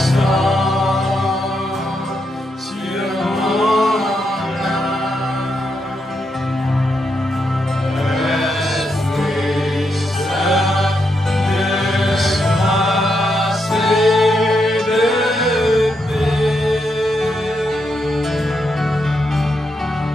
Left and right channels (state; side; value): normal; both; correlation 0.81